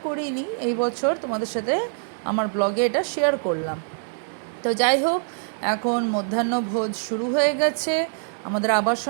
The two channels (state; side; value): silent; left; digital silence